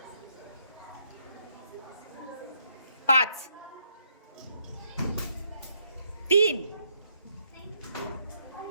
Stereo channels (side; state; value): both; inverted; correlation -0.75